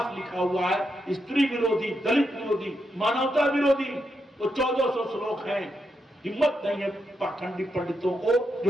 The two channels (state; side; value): normal; both; correlation 0.83